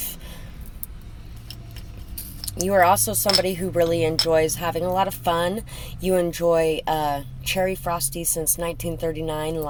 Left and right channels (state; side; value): identical; both; correlation 1.00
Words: You are also somebody who really enjoys having a lot of fun. You enjoy cherry frosty since 1939